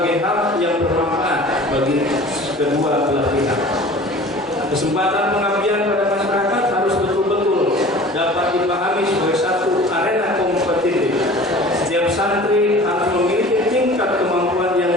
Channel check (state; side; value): normal; both; correlation 0.43